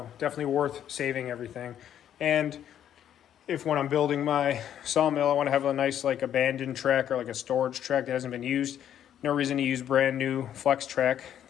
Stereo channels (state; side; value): quieter; right; 10.2 dB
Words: definitely worth saving everything. And if when I'm building my sawmill, I want to have a nice abandoned track or a storage track that hasn't been used, no reason to use brand new flex track.